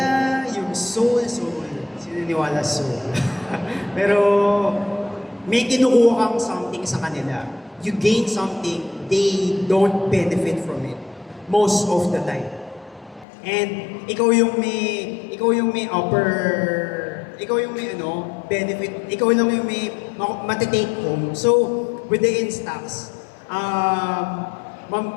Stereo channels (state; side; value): drops out; right; at 13.2 s